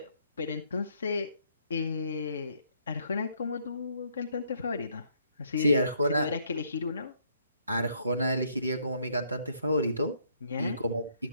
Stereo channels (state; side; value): inverted; both; correlation -0.69